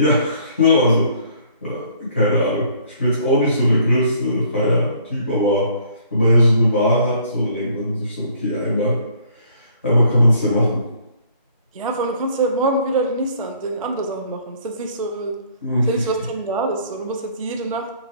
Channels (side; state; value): both; inverted; correlation -0.59